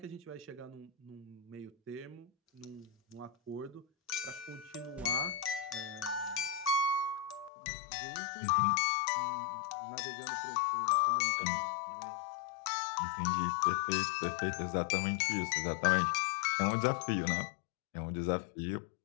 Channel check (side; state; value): right; drops out; at 7.5 s